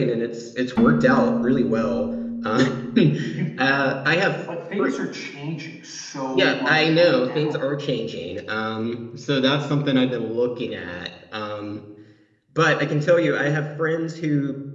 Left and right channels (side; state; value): both; identical; correlation 1.00